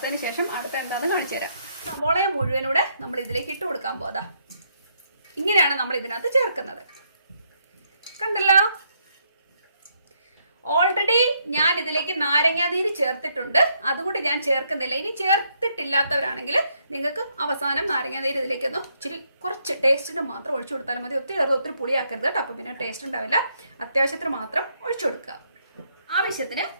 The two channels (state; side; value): inverted; both; correlation -0.74